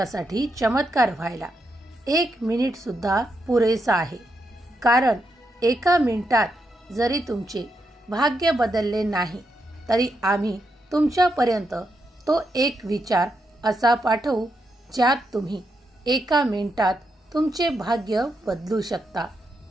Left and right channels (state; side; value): normal; both; correlation 0.82